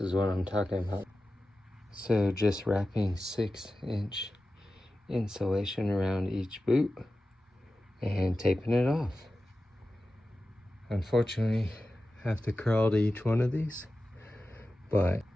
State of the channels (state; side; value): normal; both; correlation 0.94